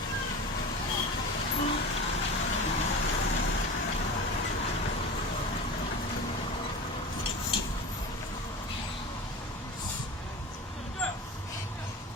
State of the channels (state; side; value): normal; both; correlation 0.31